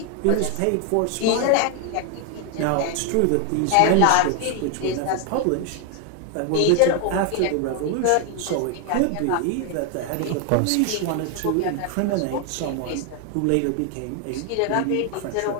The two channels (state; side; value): different; both; correlation 0.00